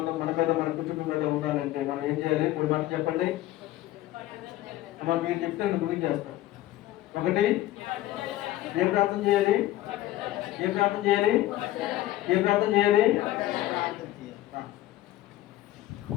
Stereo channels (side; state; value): right; quieter; 15.2 dB